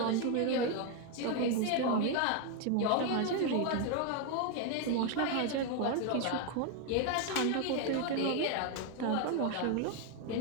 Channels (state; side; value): different; both; correlation 0.01